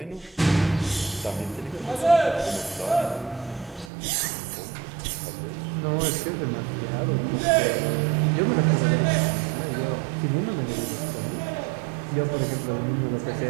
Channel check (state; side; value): drops out; left; at 3.9 s